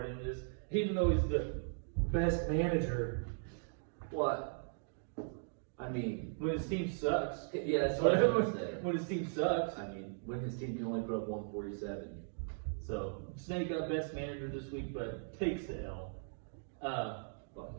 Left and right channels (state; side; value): silent; left; digital silence